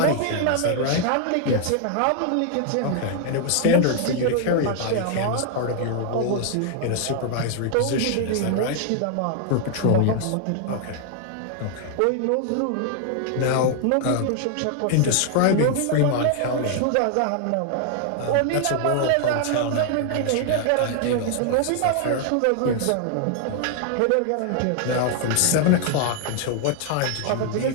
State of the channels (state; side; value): different; both; correlation 0.00